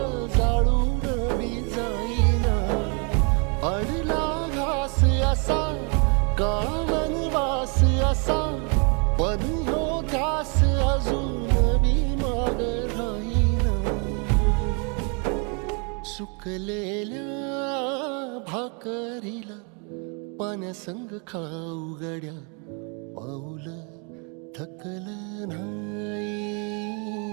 जाळून बी जाईना. अडला घास असा, काळा वनवास असा, पण ह्यो ध्यास अजून बी माग राहीना. सुकलेल्या भाकरीला पाण्यासंग खाऊ गड्या, पाऊल थकलं नाही.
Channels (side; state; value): left; quieter; 35.6 dB